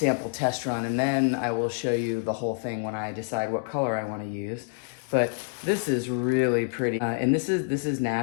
test run, and then I will show you the whole thing when I decide what color I want to use. But this is really pretty, and this is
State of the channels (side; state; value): right; silent; 60 dB below the other